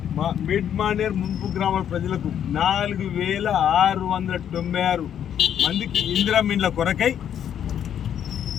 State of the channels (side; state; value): right; quieter; 9.4 dB